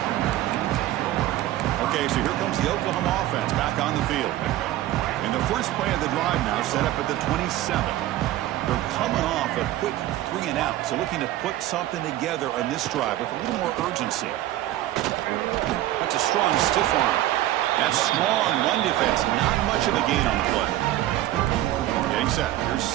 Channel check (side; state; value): left; quieter; 14.5 dB